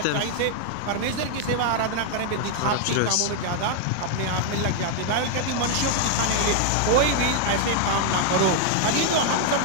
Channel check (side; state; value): both; different; correlation 0.00